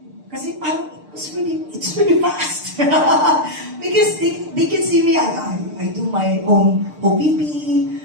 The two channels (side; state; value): left; late; 6.6 ms